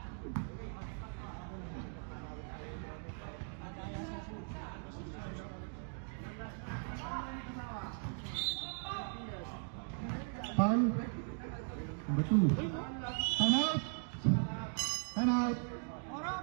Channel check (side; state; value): left; silent; 52 dB below the other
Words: Foul. Number 2. Time out. Time out. Poro,